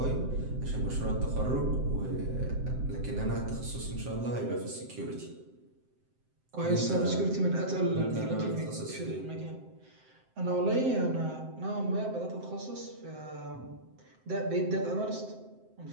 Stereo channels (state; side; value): late; left; 7.7 ms